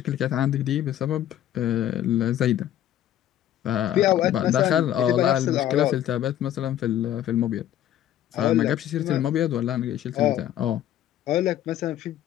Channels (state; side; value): quieter; right; 11.8 dB